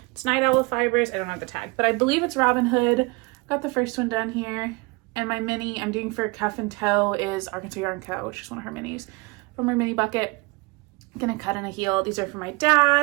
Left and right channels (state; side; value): quieter; left; 26.5 dB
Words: It's Night Owl Fibers. I don't have the tag, but I believe it's Robin Hood. Got the first one done here. And my mini I'm doing for cuff and toe is Arkansas Yarn Co., which is one of her minis from her mini bucket. I'm gonna cut in a heel. These are for my